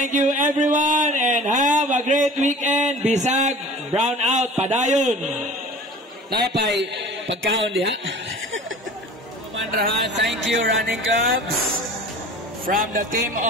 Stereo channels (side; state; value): both; normal; correlation 0.42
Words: you everyone and have a great weekend. Bisag, brown out, padayon. Napay pagkaon diha. Manrahan, thank you running clubs. From the team